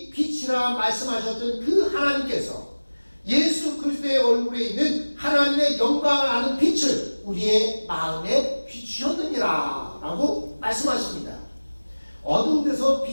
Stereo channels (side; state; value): both; inverted; correlation -1.00